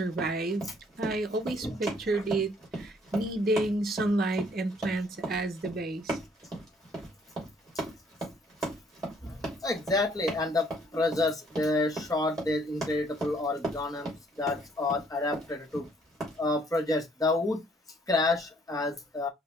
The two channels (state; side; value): normal; both; correlation 0.63